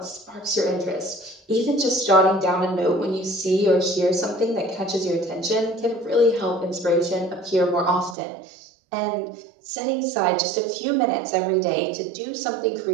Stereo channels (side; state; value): left; drops out; at 8.2 s